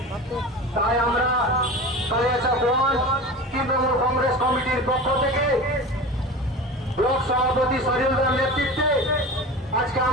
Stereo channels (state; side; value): normal; both; correlation 0.32